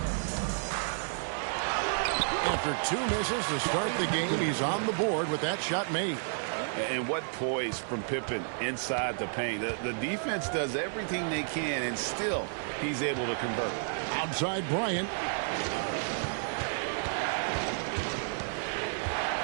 After 2 misses to start the game, he's on the board with that shot made. And what poise from Pippen inside the paint. The defense does everything they can, and still he's able to convert. Outside Bryant.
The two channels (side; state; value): left; silent; digital silence